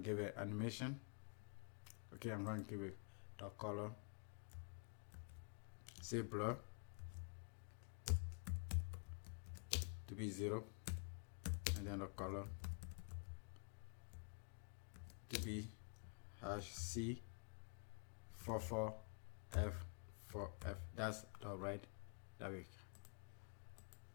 it animation. Okay, I'm going to give it the color, say blur to be 0, and then the color to be #C44F4F. That's the right that way.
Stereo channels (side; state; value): right; quieter; 39.7 dB